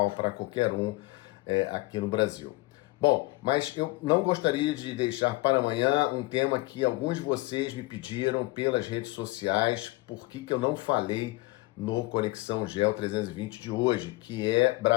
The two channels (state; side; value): quieter; right; 21.7 dB